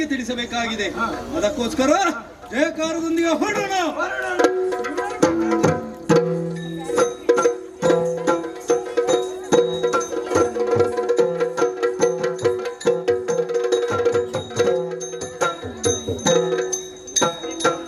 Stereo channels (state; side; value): identical; both; correlation 1.00